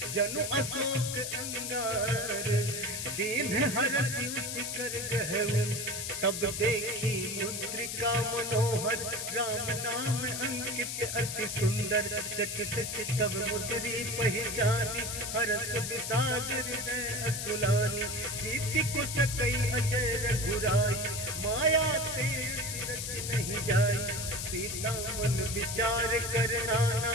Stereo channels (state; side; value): noise; left; hiss, 4 dB below the sound